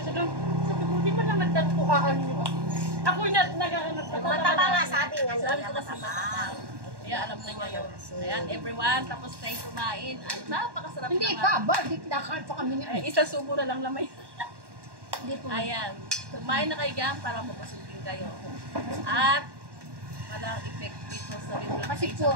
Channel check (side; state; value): left; late; 1.1 ms